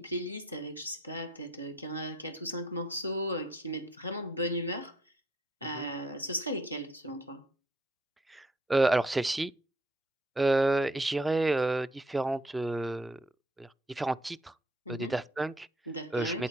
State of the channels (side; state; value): both; normal; correlation 0.65